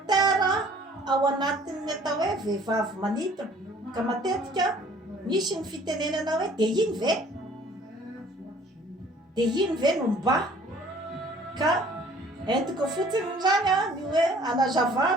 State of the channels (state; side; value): normal; both; correlation 0.55